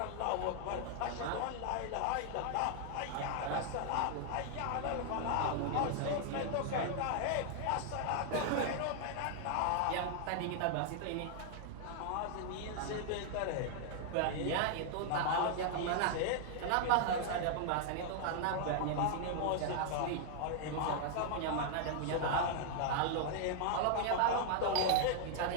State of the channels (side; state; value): both; different; correlation 0.00